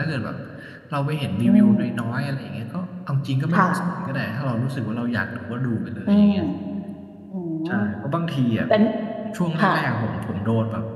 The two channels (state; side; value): identical; both; correlation 1.00